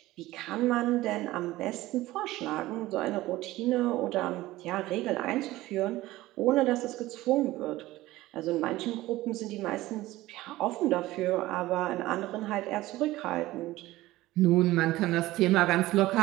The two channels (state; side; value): quieter; left; 17.3 dB